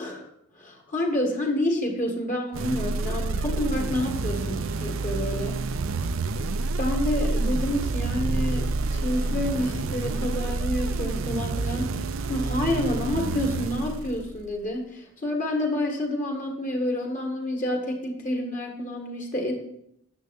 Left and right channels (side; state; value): both; normal; correlation 0.66